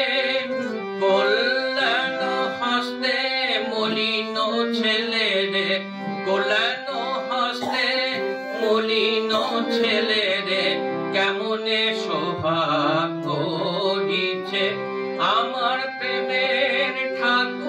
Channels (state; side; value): identical; both; correlation 1.00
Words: কল্যাণ হস্তে মলিন ছেলে রে কল্যাণ হস্তে মলিন ছেলে রে কেমনে শোভা করিছে আমার প্রেমের